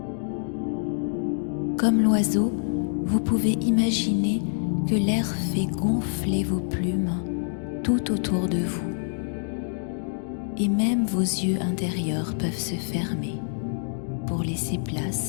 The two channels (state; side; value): silent; right; digital silence